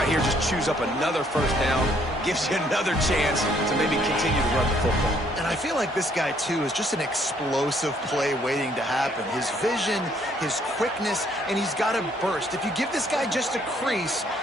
here, just choose up another first down. Gives you another chance to maybe continue to run the football. And I feel like this guy, too, is just an explosive play waiting to happen. His vision, his quickness, and he's got a burst. If you give this guy just a crease,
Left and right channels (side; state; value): both; normal; correlation 0.66